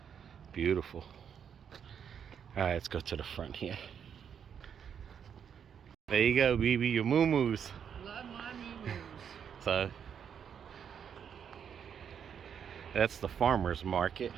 Beautiful. All right, let's go to the front here. There you go, BB, your moo-moos. Love my moo-moos. So that's the farmer's market,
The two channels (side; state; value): left; quieter; 7.9 dB